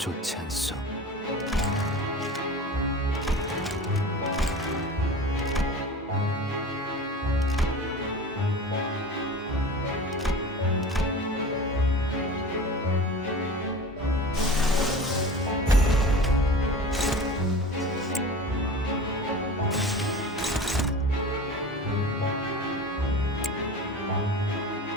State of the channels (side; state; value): both; normal; correlation 0.36